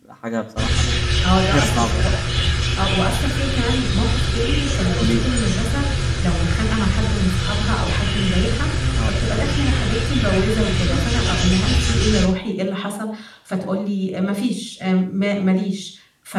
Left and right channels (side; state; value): both; identical; correlation 1.00